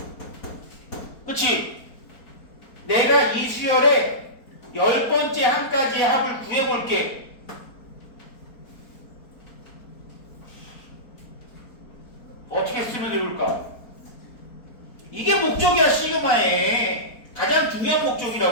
그치? 내가 이 수열의 10번째 항까지의 합을 구해볼게. 어떻게 쓰면 좋을까? 이게 목적이야. 시그마의 가장 중요한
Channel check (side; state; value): right; late; 4.3 ms